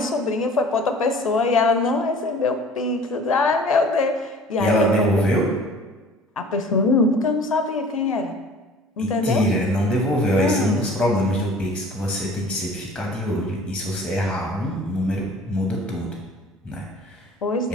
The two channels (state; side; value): normal; both; correlation 0.47